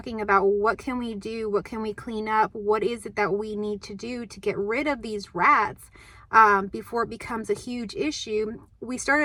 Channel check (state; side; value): identical; both; correlation 1.00